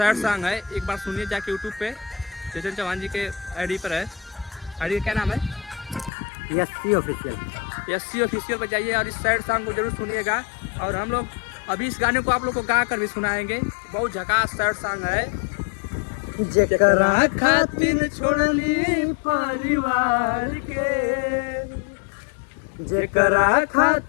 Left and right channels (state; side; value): drops out; right; at 6.1 s